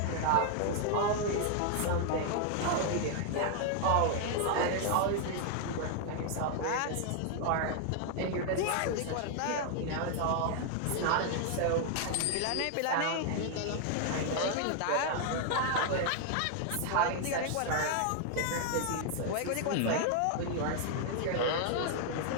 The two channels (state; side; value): different; both; correlation 0.00